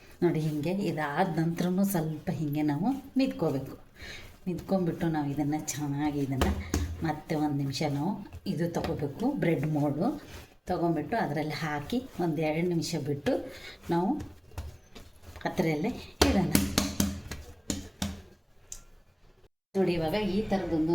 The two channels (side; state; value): both; identical; correlation 1.00